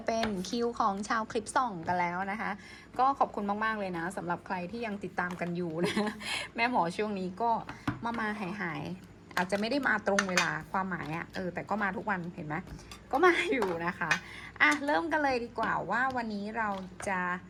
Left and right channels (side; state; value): both; identical; correlation 1.00